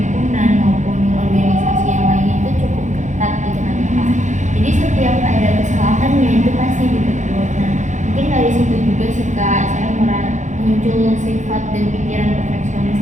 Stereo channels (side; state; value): left; late; 0.35 ms